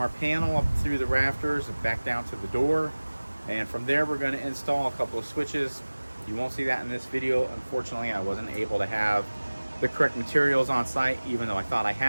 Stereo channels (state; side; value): inverted; both; correlation -1.00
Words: panel up through the rafters and back down to the door, and from there we're going to install a couple of switches. You won't see that in this video. Unfortunately, I wasn't able to have the correct materials on site, even though I thought I